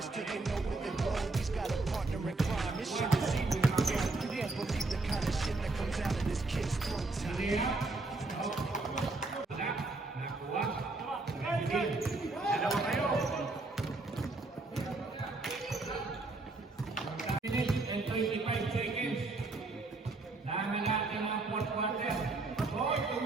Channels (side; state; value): left; quieter; 3.3 dB